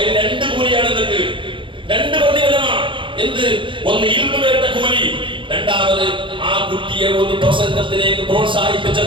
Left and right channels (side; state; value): left; late; 0.24 ms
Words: 2 കൂലിയാണ് നിങ്ങൾക്ക്, 2 പ്രതിഫലമാണ്. എന്ത്? ഒന്ന് ഇൽമു കേട്ട കൂലി, രണ്ടാമത് ആ കുട്ടിയെ ഒരു പ്രസംഗത്തിലേക്ക് പ്രോത്സാഹിപ്പിച്ച